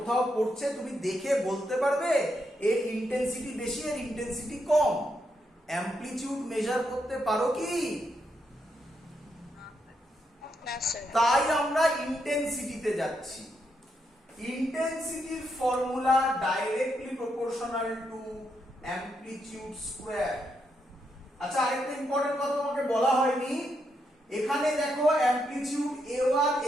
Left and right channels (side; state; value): both; normal; correlation 0.80